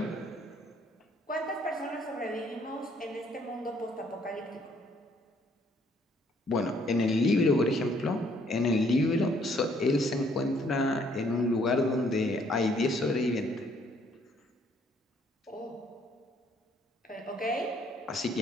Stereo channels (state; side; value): normal; both; correlation 0.65